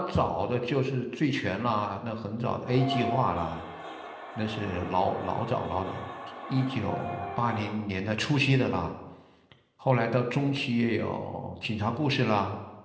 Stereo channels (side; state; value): both; identical; correlation 1.00